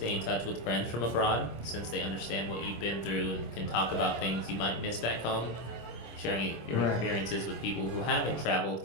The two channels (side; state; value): right; late; 26 ms